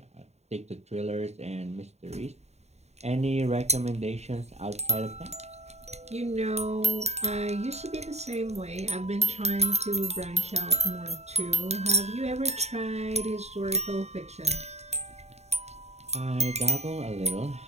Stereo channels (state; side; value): late; left; 0.32 ms